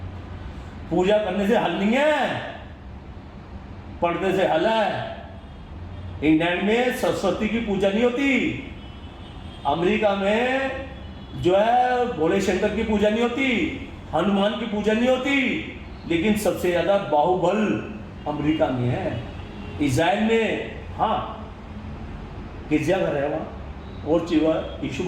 पूजा करने से हल नहीं है, पढ़ने से हल है। इंग्लैंड में सरस्वती की पूजा नहीं होती, अमेरिका में जो है भोले शंकर की पूजा नहीं होती, हनुमान की पूजा नहीं होती, लेकिन सबसे ज़्यादा बाहुबल अमेरिका में है। इज़राइल में हाँ गिरजाघर है वहाँ, और चीज़ यीशु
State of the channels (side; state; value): both; identical; correlation 1.00